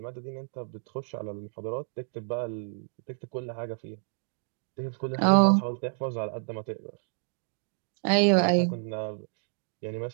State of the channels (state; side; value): silent; left; 58 dB below the other